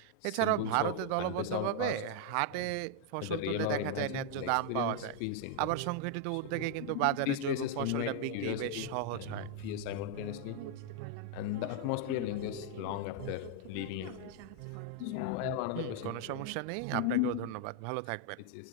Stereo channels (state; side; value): different; both; correlation 0.00